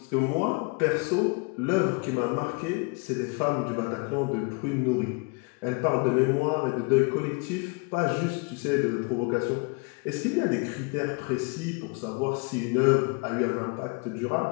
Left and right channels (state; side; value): quieter; right; 31.1 dB